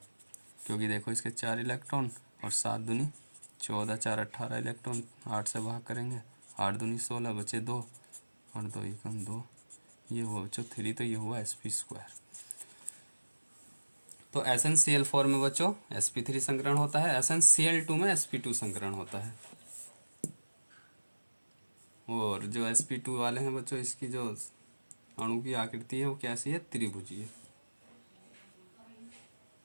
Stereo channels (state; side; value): inverted; both; correlation -1.00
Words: क्योंकि देखो इसके 4 इलेक्ट्रॉन और 7 दूनी 14, 4 18 इलेक्ट्रॉन, 8 से भाग करेंगे, 8 दूनी 16, बचे 2 और 2 एकम 2, ये हुआ बच्चों 3, तो ये हुआ sp2। तो SnCl4 में बच्चों sp3 संकरण होता है, SnCl2 में sp2 संकरण होता है। और जो sp2 वाले हैं बच्चों, इसकी जो अणु की आकृति है वो कैसी है, त्रिभुजीय।